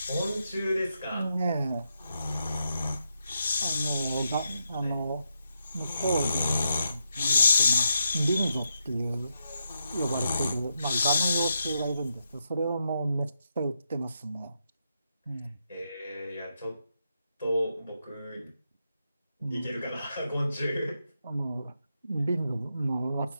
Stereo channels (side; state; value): both; inverted; correlation -0.83